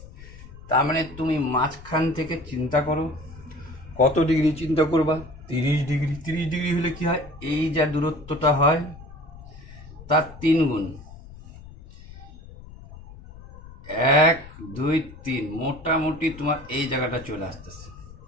তার মানে তুমি মাঝখান থেকে চিন্তা করো কত ডিগ্রি চিন্তা করবা, 30 ডিগ্রি। 30 ডিগ্রি হলে কি হয়, এই যা দূরত্বটা হয় তার 3 গুণ, 1 2 3, মোটামুটি তোমার এই জায়গাটা চলে আসতেছে।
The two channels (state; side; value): noise; left; rumble, 17 dB below the sound